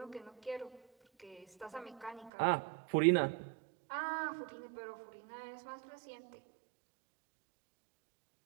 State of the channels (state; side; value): drops out; left; at 2.3 s